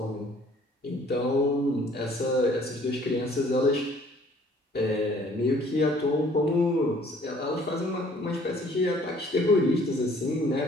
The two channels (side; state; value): both; normal; correlation 0.57